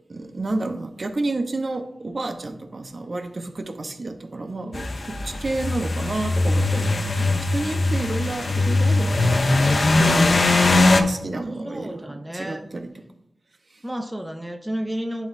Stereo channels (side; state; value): both; normal; correlation 0.94